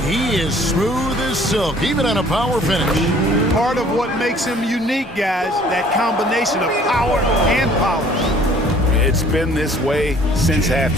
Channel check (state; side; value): normal; both; correlation 0.55